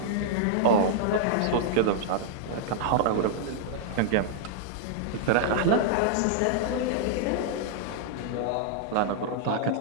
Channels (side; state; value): both; different; correlation -0.01